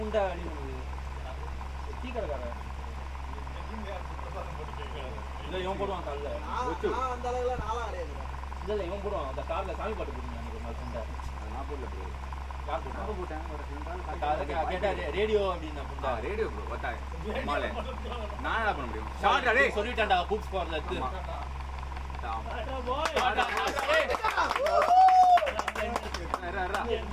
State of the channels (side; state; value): both; identical; correlation 1.00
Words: அடி டீ கடைக்காரன் இல்லை இவன் போடுவான் காலில். அந்த அளவுல நாளா அடையாது. இல்லை இவன் போடுவான். அந்த காரில் சாமி பாட்டு போட்டுருந்தாங்க ஒரு நாள் புண்டை. நான் போடல ப்ரோ. யார் போட்டான்? கேட்டா ரேடியோ அப்படின்னு புண்டா. ரேடியோ ப்ரோ வட்டாய் மாலே நான் என்ன பண்ண முடியும்? ஷார்ட் அடே சொல்லிட்டான்டா கூப்ஸ் போறல இருக்கு.